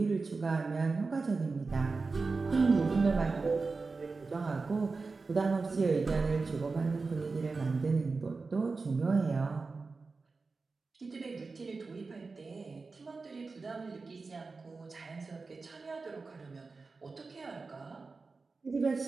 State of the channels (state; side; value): quieter; left; 4.1 dB